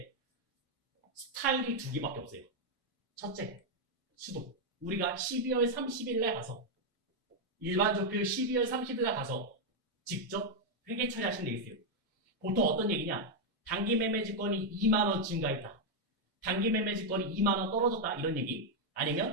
스타일이 2개밖에 없어요. 첫째, 수도. 우리가 12월 30일에 가서 일반 조표 12월 30일에 가서 직접 회계 처리하시면 되겠어요. 보통 어떤 얘기냐? 단기 매매지권이 2만 원 증가했다. 단기 매매지권이 2만 원 떨어졌다. 이런 얘기.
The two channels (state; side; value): normal; both; correlation 0.00